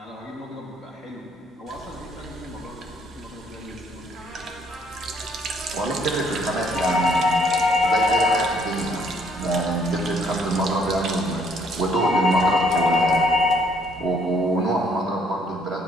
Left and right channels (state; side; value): normal; both; correlation 0.65